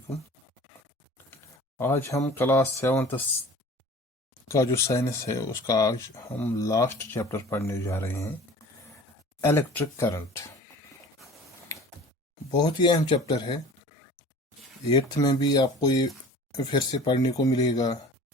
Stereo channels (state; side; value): normal; both; correlation 0.43